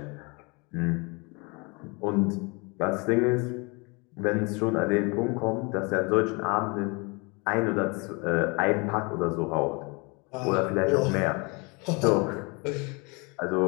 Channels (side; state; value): right; quieter; 29.5 dB